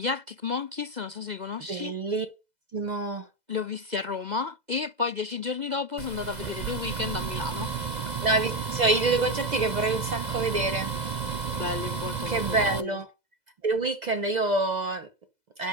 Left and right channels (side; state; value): left; late; 2.0 ms